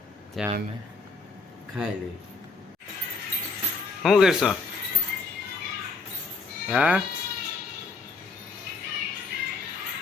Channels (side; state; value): right; quieter; 4.1 dB